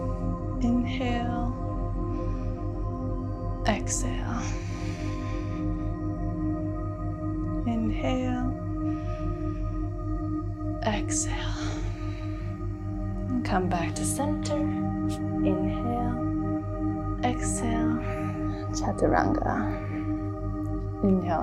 Inhale, exhale. Inhale, exhale. And come back to center. Inhale, exhale, chaturanga. Inhale,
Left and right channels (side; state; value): both; identical; correlation 1.00